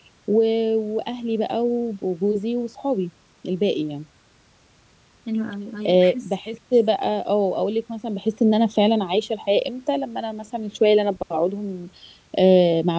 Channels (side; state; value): both; identical; correlation 1.00